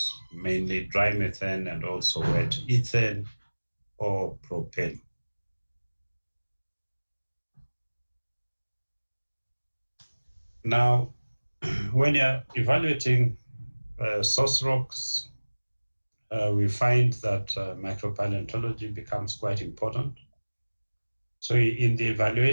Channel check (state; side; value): inverted; both; correlation -1.00